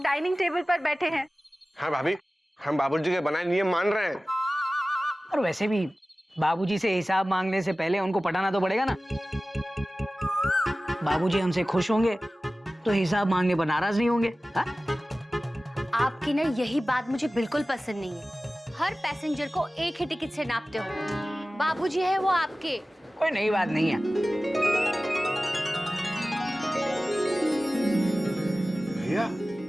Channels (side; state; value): both; normal; correlation 0.96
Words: डाइनिंग टेबल पर बैठे हैं। हाँ भाभी, हम बाबूजी के बनाए नियम मान रहे हैं। और वैसे भी बाबूजी से हिसाब मांगने से पहले उनको पटाना तो पड़ेगा ना। बाबूजी हमसे खुश होंगे तो हिसाब मांगने पर नाराज नहीं होंगे। हा? आपकी ना यही बात मुझे बिल्कुल पसंद नहीं है। हर पैसेंजर को एक ही टिकट से नापते हो। बाबूजी है वो आपके। कोई नई बात नहीं है। भैया,